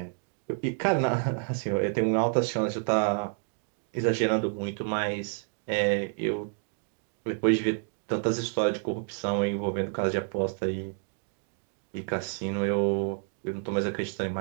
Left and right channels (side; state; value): left; silent; 58 dB below the other